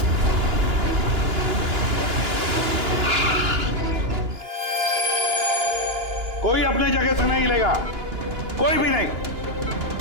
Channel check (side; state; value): left; late; 2.9 ms